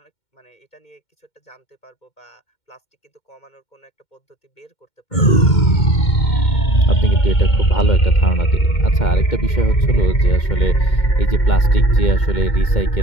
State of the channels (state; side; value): late; right; 2.2 ms